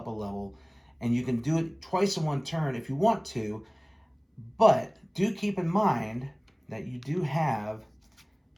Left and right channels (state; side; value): identical; both; correlation 1.00